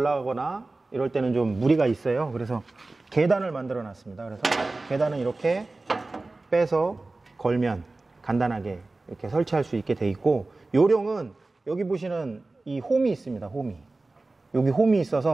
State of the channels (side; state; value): left; quieter; 3.2 dB